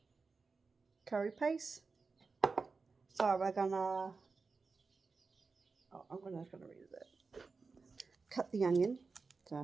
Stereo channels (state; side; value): quieter; left; 4.4 dB